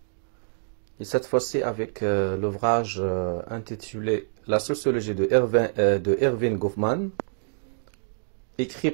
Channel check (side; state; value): left; silent; digital silence